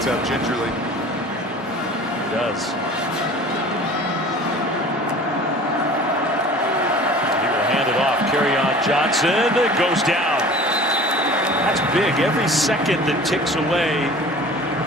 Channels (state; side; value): normal; both; correlation 0.43